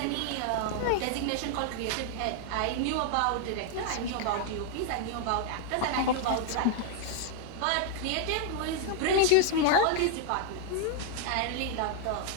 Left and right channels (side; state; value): both; different; correlation 0.00